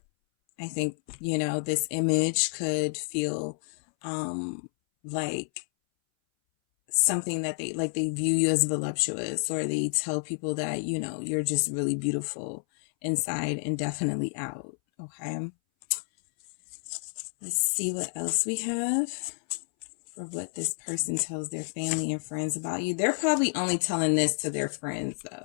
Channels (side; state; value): right; silent; 58 dB below the other